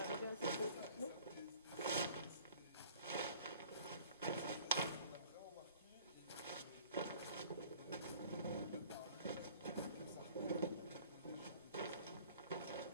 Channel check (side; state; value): both; inverted; correlation -0.50